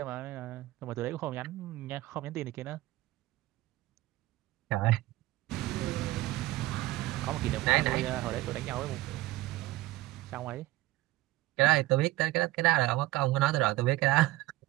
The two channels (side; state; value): left; quieter; 18.0 dB